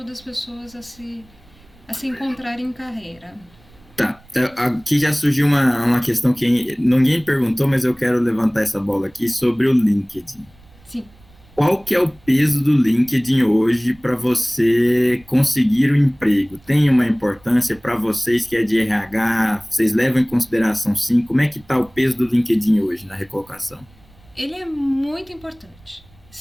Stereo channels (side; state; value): right; noise; rumble, 28 dB below the sound